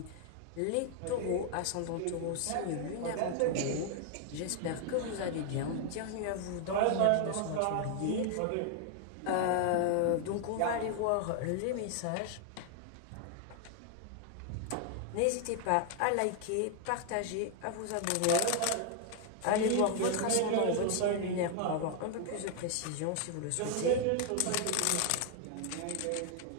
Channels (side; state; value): both; different; correlation 0.00